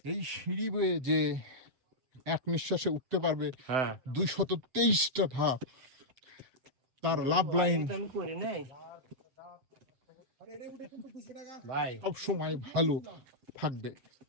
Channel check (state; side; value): late; left; 7.6 ms